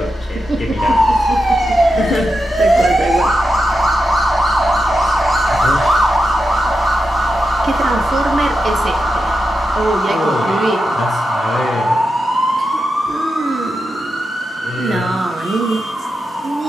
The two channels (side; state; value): both; normal; correlation 0.88